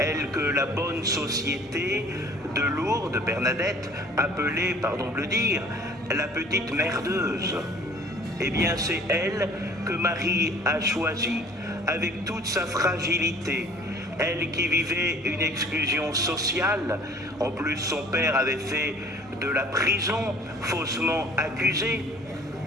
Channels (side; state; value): both; normal; correlation 0.51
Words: que la bonne société de Lourdes, Bernadette, appelait, pardon de le dire, la petite merdeuse. Eh bien, c'est elle que Marie a choisie, avec toute sa fragilité. Elle qui vivait une exclusion sociale, en plus son père avait fait de la prison, faussement accusé,